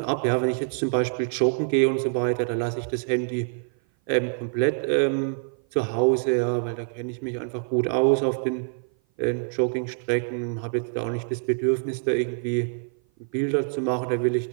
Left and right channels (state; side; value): silent; left; 56 dB below the other